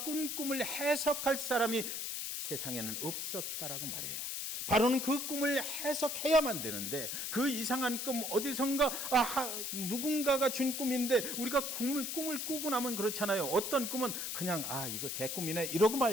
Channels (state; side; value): noise; left; hiss, 3 dB below the sound